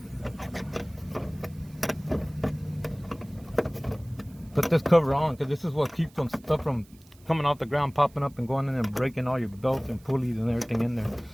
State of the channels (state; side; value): noise; right; hiss, 28 dB below the sound